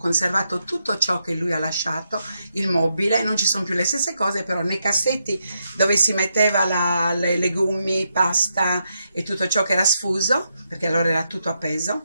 tutto ciò che lui ha lasciato, il mobile, non ci sono più le stesse cose, però nei cassetti dove si metteva le legumi, pasta e tutto ciò che era sfuso, perché allora era tutto appeso,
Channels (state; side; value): inverted; both; correlation -0.82